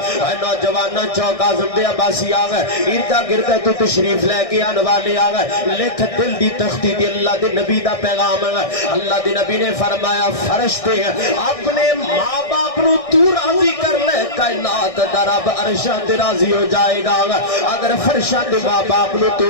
اے نوجواناں چوک اعظم دے عباسی آ گئے اردا گردا تو تشریف لے کے آنے والے آ گئے. لکھ دل دی تختی دی اللہ دے نبی دا پیغام ہے. اللہ دے نبی نے فرمایا فرشتے اپنے ماں باپ نو تو راضی کر لے کائنات دا رب عرشاں تے راضی ہو جائے گا. اگر فرشاں دے ماں باپ نو تو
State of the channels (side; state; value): right; late; 1.6 ms